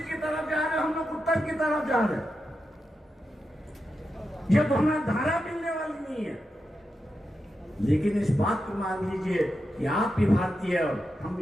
तरफ जा रहे हो, हम लोग उत्तर की तरफ जा रहे हैं। ये दोनों धारा मिलने वाली नहीं है, लेकिन इस बात को मान लीजिए कि आप भी भारतीय और हम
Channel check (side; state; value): both; normal; correlation 0.88